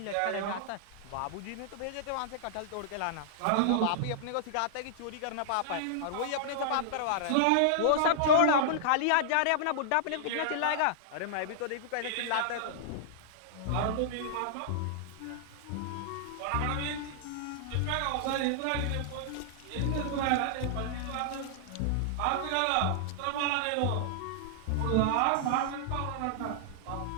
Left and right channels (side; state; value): both; different; correlation -0.01